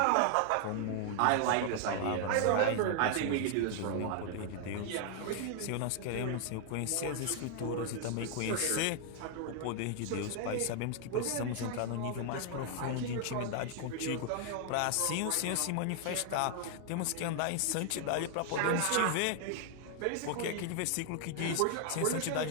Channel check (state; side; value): different; both; correlation 0.00